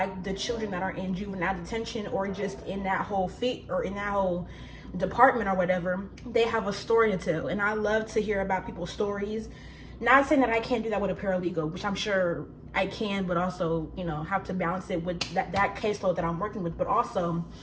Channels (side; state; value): both; identical; correlation 1.00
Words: the children that are in juvenile detention or just in that whole in that whole department or whatever, they have a story to tell. And I love to hear about people's stories. Not saying that I can't do that with a paralegal, which I'm sure I can, but also, you know, have to balance it with that caseload that I'm working with. But also,